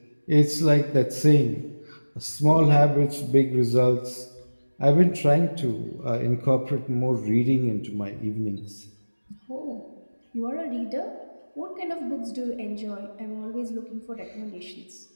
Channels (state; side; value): inverted; both; correlation -1.00